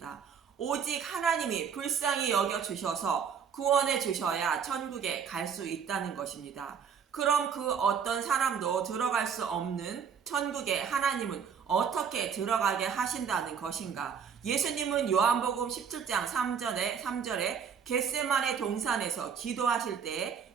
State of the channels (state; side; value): quieter; left; 7.1 dB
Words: 오직 하나님이 불쌍히 여겨주셔서 구원해 주셔야 천국에 갈 수 있다는 것입니다. 그럼 그 어떤 사람도 들어갈 수 없는 천국에 하나님은 어떻게 들어가게 하신다는 것인가? 예수님은 요한복음 17장 3절에 겟세마네 동산에서 기도하실 때